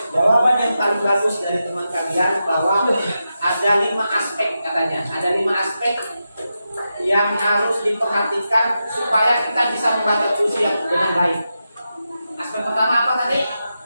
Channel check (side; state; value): both; inverted; correlation -0.89